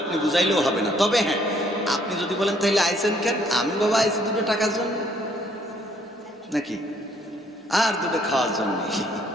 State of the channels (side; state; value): both; normal; correlation 0.65